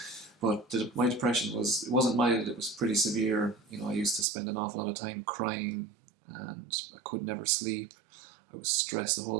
But my depression it wasn't mild, it was pretty severe. I used to spend an awful lot of time crying, and I could never sleep. I was stressed the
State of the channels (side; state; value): left; drops out; at 4.2 s